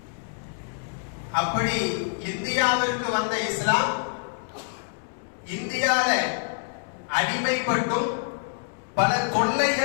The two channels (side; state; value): right; silent; 61 dB below the other